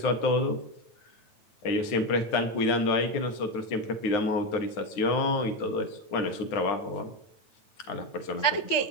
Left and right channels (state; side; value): late; right; 9.1 ms